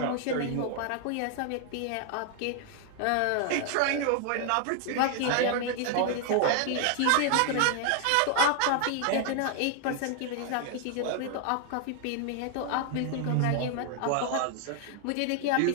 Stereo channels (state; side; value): different; both; correlation 0.00